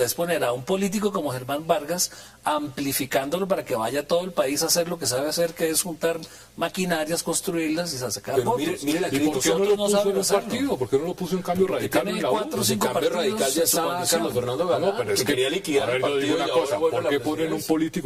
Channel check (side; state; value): both; identical; correlation 1.00